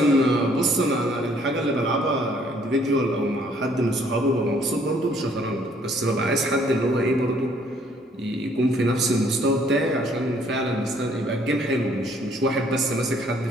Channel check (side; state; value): both; normal; correlation 0.63